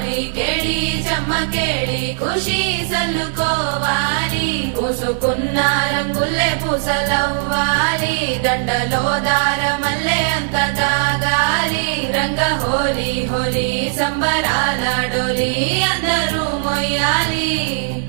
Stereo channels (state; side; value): silent; left; 67 dB below the other